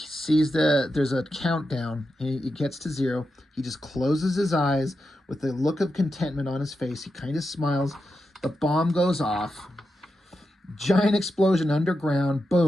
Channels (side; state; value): both; normal; correlation 0.88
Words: there's a countdown. He gets to 0. He just closes his eyes with a look of contentment on his face. He kind of smiles. The bomb goes off. Giant explosion underground.